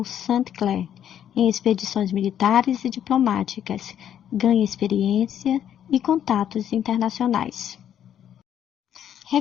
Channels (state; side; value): quieter; right; 9.9 dB